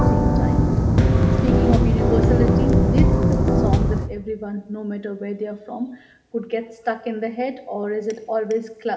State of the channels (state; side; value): identical; both; correlation 1.00